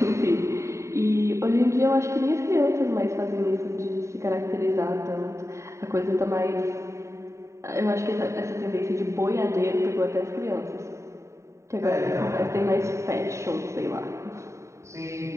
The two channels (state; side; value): late; left; 0.14 ms